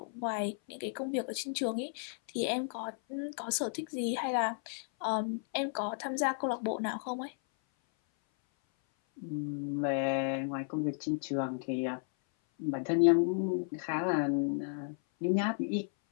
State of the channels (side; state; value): right; silent; 55 dB below the other